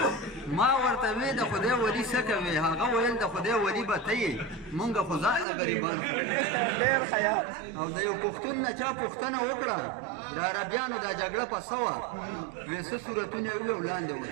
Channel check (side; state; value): left; drops out; at 5.5 s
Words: ما ورته وی د خدای ولی څه کوې هغه ویل د خدای ولی به ته یې مونږ خو ځان غریبان او د یو پښتون نه چا پوښتنه وکړه د عربیانو دا جګړه په څه وه وی څه صورتونه یې وویل وړاندې